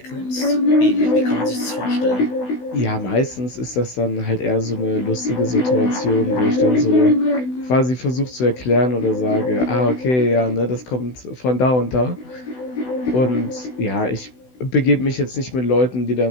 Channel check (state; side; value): late; right; 16 ms